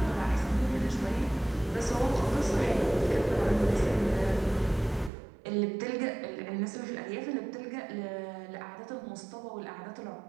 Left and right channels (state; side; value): drops out; left; at 5.1 s